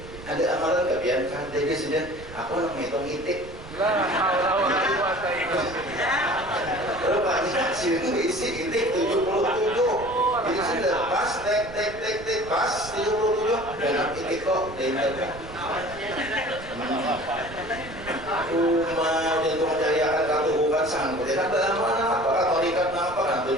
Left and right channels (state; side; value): noise; right; rumble, 15 dB below the sound